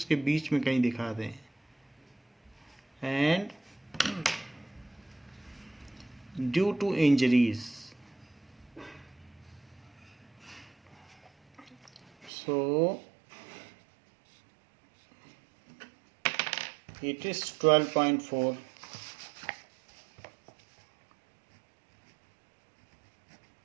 बीच में कहीं दिखा दें। And due to injuries, so it is 12.4.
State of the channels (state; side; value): drops out; left; at 12.3 s